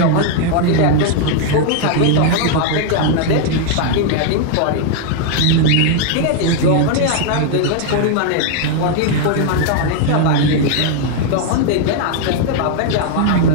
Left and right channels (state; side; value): different; both; correlation 0.00